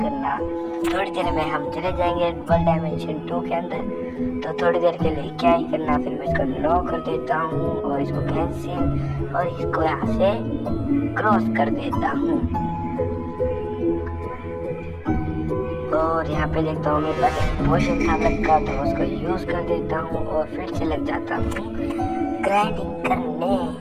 थोड़ी देर में हम चले जाएंगे वर्ल्ड डायमेंशन 2 के अंदर, तो थोड़ी देर के लिए क्या ही करना। फिर मैं इसको नो कर देता हूँ और इसको कैंसिल और इसको यहाँ से क्रॉस कर देता हूँ। और यहाँ पे देखता हूँ मेरे पास एक पोशन था का, तो उसको यूज कर देता हूँ और फिर से लग जाता हूँ ग्राइंडिंग करने।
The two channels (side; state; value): both; identical; correlation 1.00